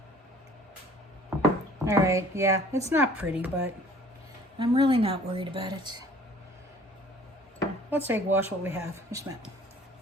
All right, yeah, it's not pretty, but I'm really not worried about it. Let's egg wash what we have. Just a minute.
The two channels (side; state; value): both; normal; correlation 0.52